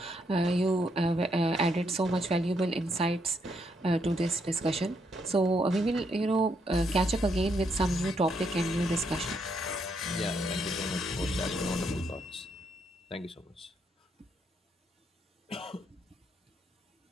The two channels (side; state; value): both; normal; correlation 0.75